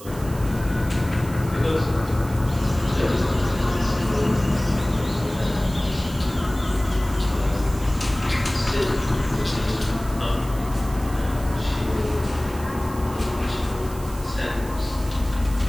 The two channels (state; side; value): noise; right; hiss, 18 dB below the sound